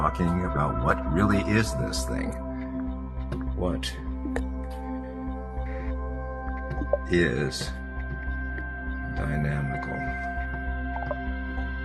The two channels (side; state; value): both; identical; correlation 1.00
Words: about what really is this thing. What is dynamical